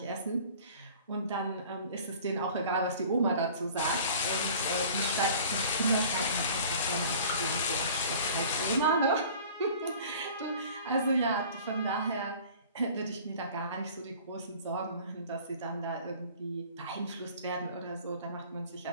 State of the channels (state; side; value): inverted; both; correlation -0.46